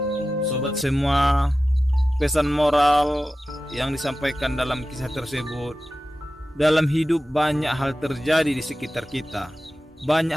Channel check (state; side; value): normal; both; correlation 0.94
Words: Sobat semua, pesan moral yang disampaikan dalam kisah tersebut, dalam hidup banyak hal terjadi di sekitar kita, banyak